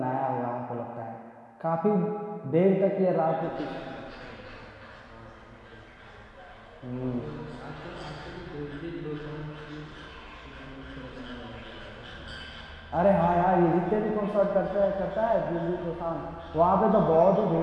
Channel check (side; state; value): both; identical; correlation 1.00